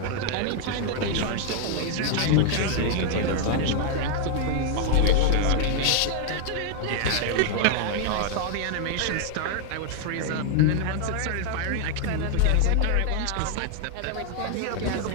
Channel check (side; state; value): both; different; correlation 0.00